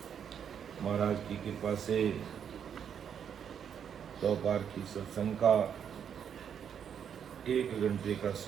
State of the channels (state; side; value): quieter; left; 8.1 dB